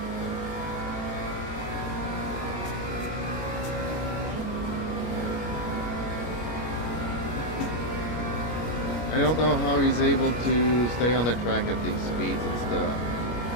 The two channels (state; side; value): late; right; 25 ms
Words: I don't know how he's able to stay on the track at these speeds and stuff.